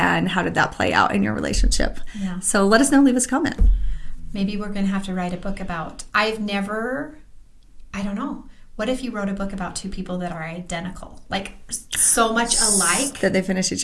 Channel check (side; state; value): both; identical; correlation 1.00